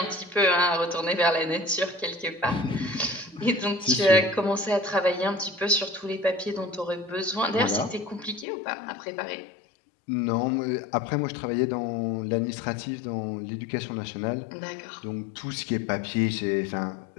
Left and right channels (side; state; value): right; drops out; at 8.5 s